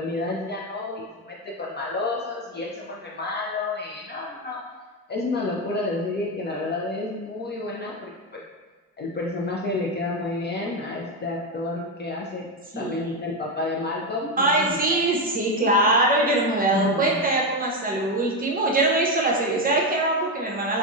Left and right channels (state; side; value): normal; both; correlation 0.10